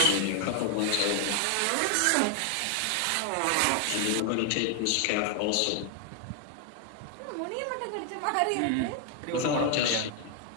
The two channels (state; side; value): different; both; correlation 0.00